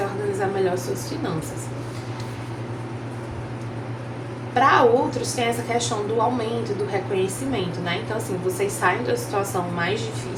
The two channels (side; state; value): both; identical; correlation 1.00